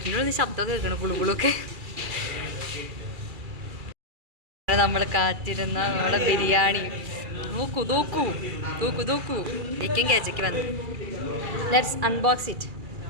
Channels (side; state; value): left; late; 2.4 ms